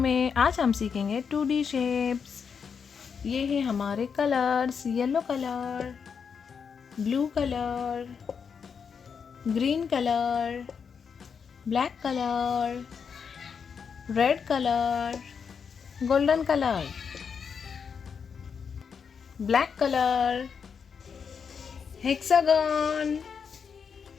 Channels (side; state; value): right; quieter; 6.4 dB